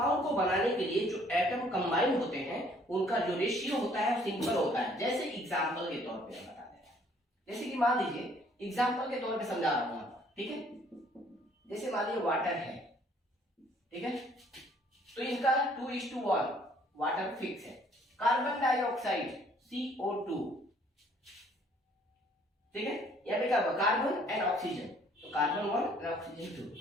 को बनाने के लिए जो एटम कंबाइन होते हैं उनका जो रेशियो होता है वो सिंपल होता है। जैसे एग्जांपल के तौर पे हम बताते हैं, जैसे कि मान लीजिए एग्जांपल के तौर पे समझा रहा हूं आपको, ठीक है, जैसे मान लीजिए वाटर है, ठीक है, तो इनका 2:1 वाटर फिक्स है। कार्बन डाइऑक्साइड CO2, ठीक है, यहाँ पे क्या होगा, कार्बन एंड ऑक्सीजन, तो कार्बन 1 एंड ऑक्सीजन 2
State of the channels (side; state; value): both; normal; correlation 0.60